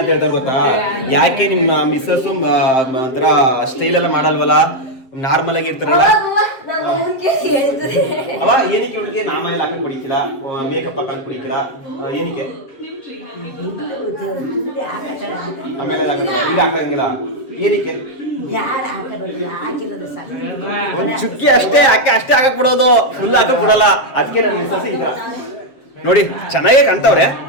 ಹೇಳ್ತಾರೆ ಗೊತ್ತಾ ಯಾಕೆ ನಿಮ್ಮ ಮಿಸ್ಸಸ್ ಒಂಥರ ಸ್ಟೈಲ್ ಎಲ್ಲ ಮಾಡಲ್ವಲ್ಲ ನಾರ್ಮಲ್ ಆಗಿ ಇರ್ತಾರಲ್ಲ ಅವ ಏನಕ್ಕೆ ಇವಳಿಗೆ ನಾಮ ಎಲ್ಲ ಹಾಕಕ್ ಬಿಡಿಕಿಲ್ಲ ಮೇಕಪ್ ಹಾಕಕ್ ಬಿಡಿಕಿಲ್ಲ ಏನಕ್ಕೆ ಆಮೇಲೆ ಈಗ ಹಾಕಂಗಿಲ್ಲ ಏನಕ್ಕೆ ಒಂದ್ ಚುಕ್ಕಿ ಅಷ್ಟೇ ಅಷ್ಟೇ ಹಾಕಕ್ ಬಿಡೋದು ಫುಲ್ ಹಾಕಕ್ ಬಿಡಲ್ಲ ಅದಕ್ಕೆ ನನ್ನ ಮಿಸ್ಸಸ್ ಈ ತರ ನೋಡಿ ಚೆನ್ನಾಗೇ ಕಾಣ್ತಾವ್ರೆ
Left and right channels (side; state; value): right; late; 7.5 ms